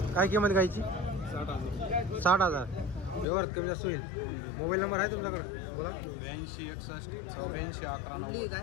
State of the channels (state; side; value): drops out; right; at 3.2 s